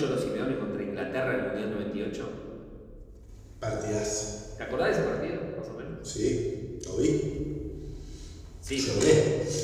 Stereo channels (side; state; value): both; identical; correlation 1.00